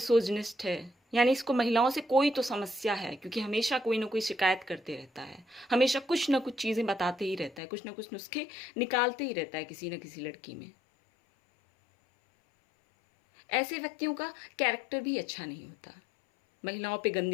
है, यानी इसको महिलाओं से कोई तो समस्या है, क्योंकि हमेशा कोई ना कोई शिकायत करते रहता है, हमेशा कुछ ना कुछ चीज़ें बताते ही रहता है, कुछ ना कुछ नुस्खे निकालते ही रहता है किसी न किसी लड़की में। ऐसे व्यक्तियों का कैरेक्टर भी अच्छा नहीं होता। महिलाओं पे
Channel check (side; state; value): right; drops out; at 7.6 s